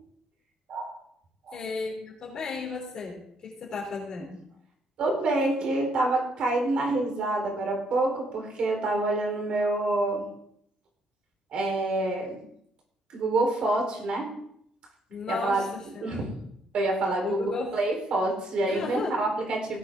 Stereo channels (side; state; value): both; normal; correlation 0.70